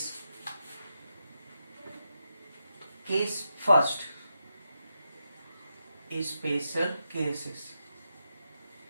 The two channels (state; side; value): inverted; both; correlation -0.86